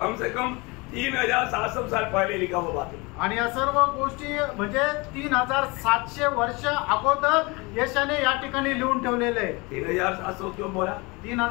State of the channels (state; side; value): quieter; right; 26.2 dB